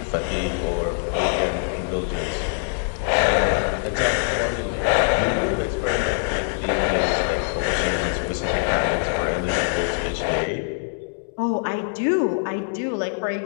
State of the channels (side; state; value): right; silent; digital silence